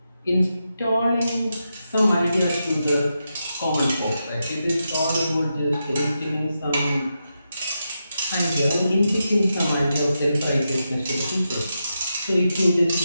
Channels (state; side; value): inverted; both; correlation -0.87